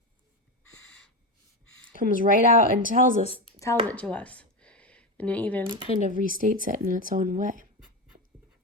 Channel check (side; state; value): both; normal; correlation 0.16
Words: Comes right out and tells it to us. And it even kind of restates it in its own way.